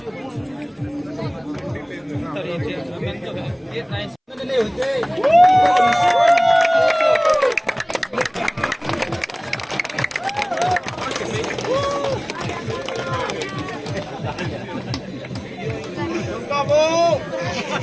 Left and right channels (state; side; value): identical; both; correlation 1.00